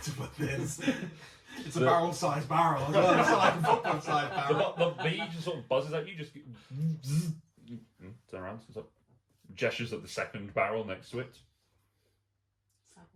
put this. It's a barrel-sized barrel as well. It's not like a football-sized barrel. The bee just sort of buzzes at you, just turn around, sort of gestures at the second barrel next to it.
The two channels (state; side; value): identical; both; correlation 1.00